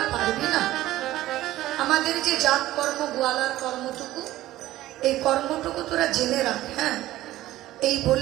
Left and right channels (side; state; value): left; quieter; 15.3 dB